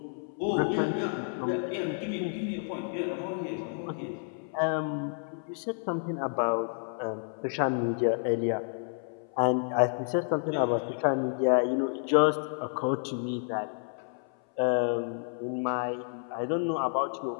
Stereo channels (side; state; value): right; silent; 58 dB below the other